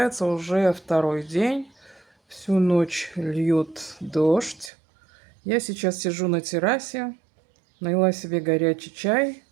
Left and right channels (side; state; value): left; drops out; at 4.7 s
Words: уже второй день. Всю ночь льет дождь. Я сейчас сижу на террасе, налила себе горячий чай.